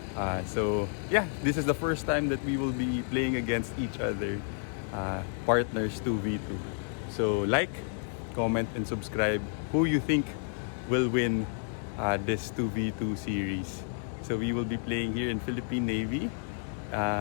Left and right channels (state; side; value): silent; right; 57 dB below the other